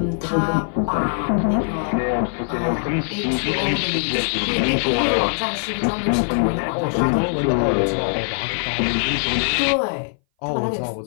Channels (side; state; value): right; silent; 60 dB below the other